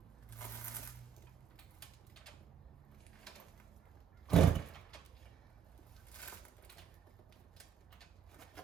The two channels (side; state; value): left; quieter; 7.9 dB